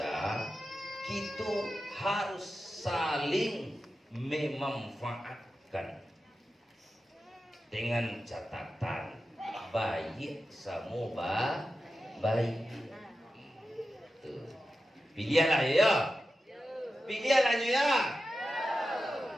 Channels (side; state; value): both; normal; correlation 0.92